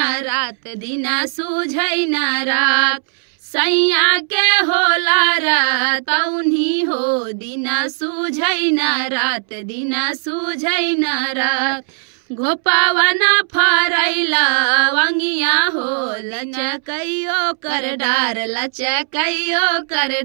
रात, दिना सूझै ना रात। सैया के होला रातौनी हो, दिना सूझै ना रात, दिना सूझै ना रात। घोपवन फरैला वंगिया हो, लचकैयो कर डार, लचकैयो कर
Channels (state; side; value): silent; left; 68 dB below the other